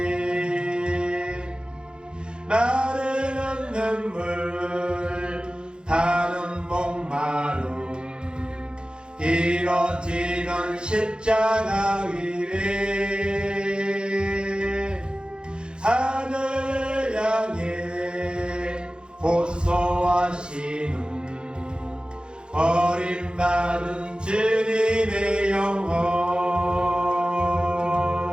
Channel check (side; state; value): left; late; 0.050 ms